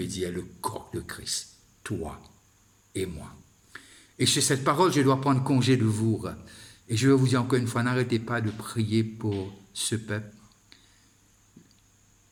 dire le corps de Christ, toi et moi. Et sur cette parole, je dois prendre congé de vous. Et je vais vous dire encore une fois, n'arrêtez pas de prier pour ce peuple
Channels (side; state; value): both; identical; correlation 1.00